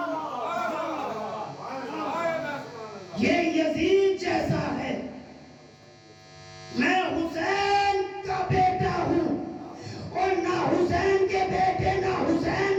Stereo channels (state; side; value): identical; both; correlation 1.00